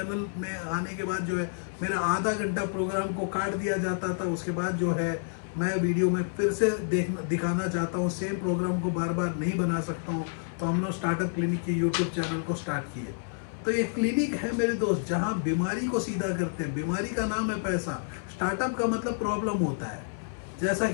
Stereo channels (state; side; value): silent; right; 59 dB below the other